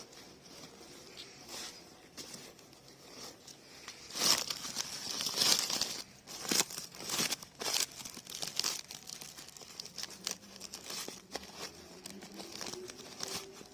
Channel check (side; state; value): both; identical; correlation 1.00